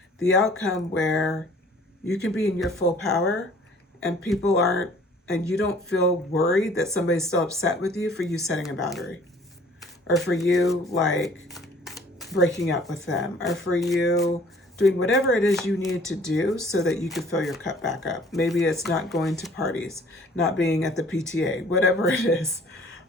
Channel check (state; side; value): normal; both; correlation 0.54